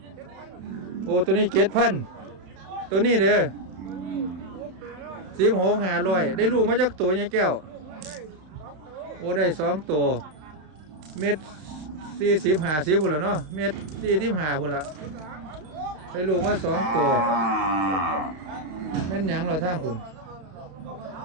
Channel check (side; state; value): left; late; 32 ms